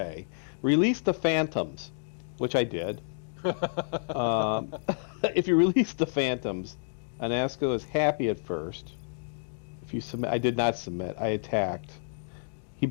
release the Phantoms, which I did. If you release the Phantoms, Anasco is happy at first. If you submit, I did not submit, I attacked. He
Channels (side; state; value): right; silent; digital silence